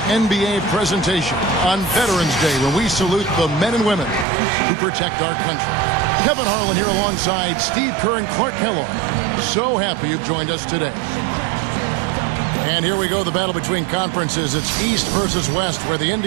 NBA presentation on Veterans Day, when we salute the men and women who protect our country. Kevin Harlan here alongside Steve Kerr and Clark Kellogg. So happy you've joined us today. And here we go, the battle between conferences. It's East versus West, where the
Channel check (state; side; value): drops out; left; at 4.2 s